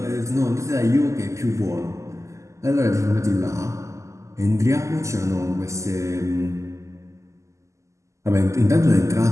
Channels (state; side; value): late; left; 0.15 ms